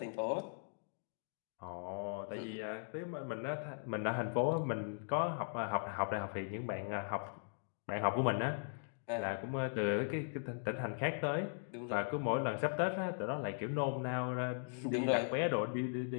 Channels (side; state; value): right; silent; digital silence